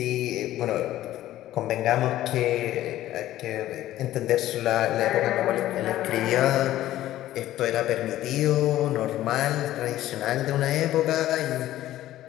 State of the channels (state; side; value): quieter; right; 14.1 dB